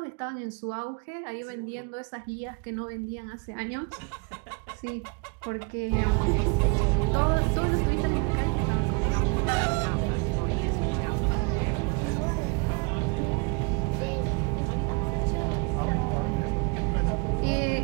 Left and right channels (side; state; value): left; quieter; 32.8 dB